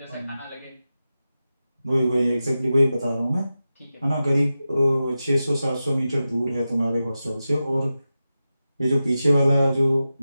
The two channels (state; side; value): inverted; both; correlation -0.92